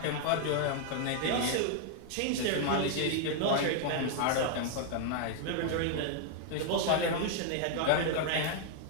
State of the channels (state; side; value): different; both; correlation 0.00